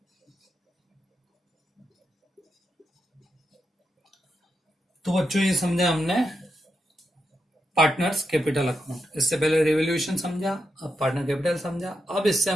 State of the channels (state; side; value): normal; both; correlation 0.85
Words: तो बच्चों ये समझा हमने पार्टनर्स कैपिटल अकाउंट। इससे पहले रिवोल्यूशन समझा, अब पार्टनर कैपिटल समझा। अब इससे